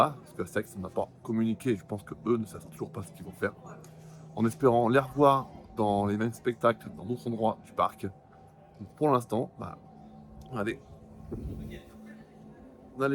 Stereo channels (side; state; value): both; identical; correlation 1.00